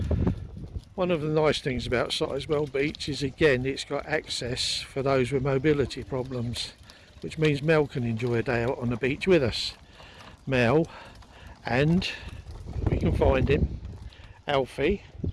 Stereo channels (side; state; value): both; identical; correlation 1.00